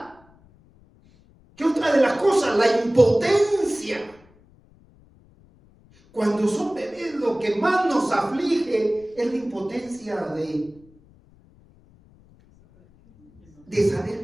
¿Qué otra de las cosas? La impotencia. Cuando son bebés, lo que más nos aflige es la impotencia de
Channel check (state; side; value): noise; left; rumble, 29 dB below the sound